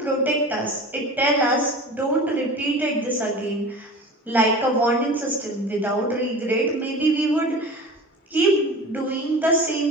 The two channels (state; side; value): normal; both; correlation 0.36